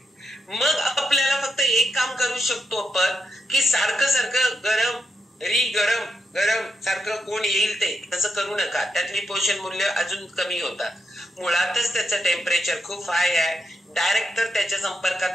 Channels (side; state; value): both; normal; correlation 0.84